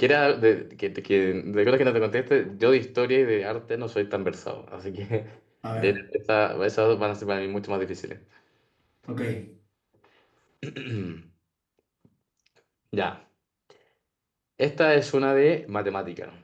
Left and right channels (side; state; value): both; identical; correlation 1.00